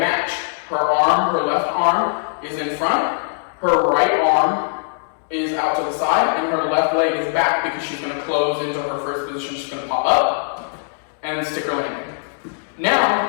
Her left arm is in front. Her right arm is out to the side, and her left leg is back because she's going to close into her first position. She's going to pop up and stick her landing.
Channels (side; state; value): right; silent; digital silence